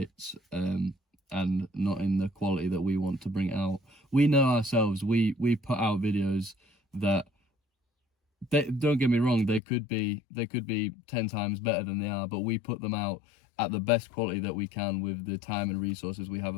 and not in the quality that we want to bring it out. We know ourselves, we put out videos that don't get me wrong, they could be 10 times better than they are, but we put them out at the best quality that we can with the time and resources we have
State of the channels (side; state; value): right; drops out; at 9.6 s